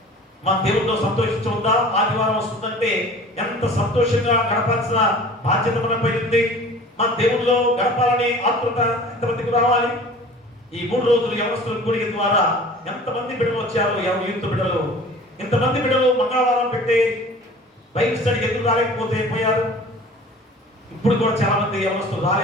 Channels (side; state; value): both; normal; correlation 0.44